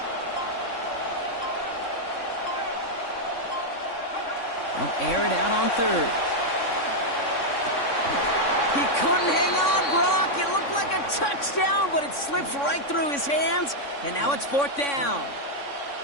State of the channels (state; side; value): late; right; 3.6 ms